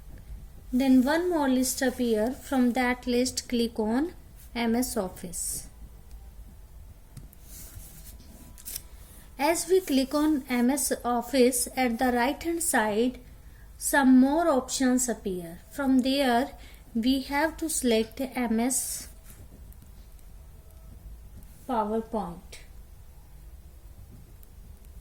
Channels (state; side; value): identical; both; correlation 1.00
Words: Then one more list appear. From that list, click on MS Office. As we click on MS Office, at the right hand side, some more options appear. From there, we have to select MS PowerPoint.